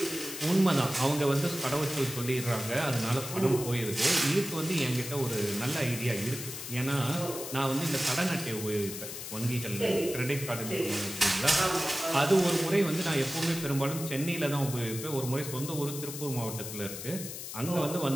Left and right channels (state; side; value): noise; left; hiss, 8 dB below the sound